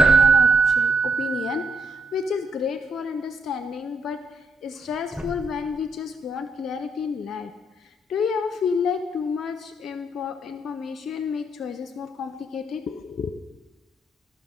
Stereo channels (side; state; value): both; normal; correlation 0.77